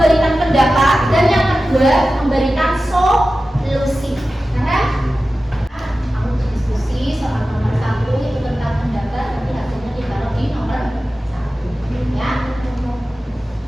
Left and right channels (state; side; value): normal; both; correlation 0.94